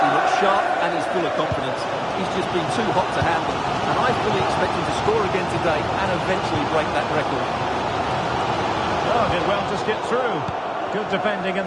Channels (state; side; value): identical; both; correlation 1.00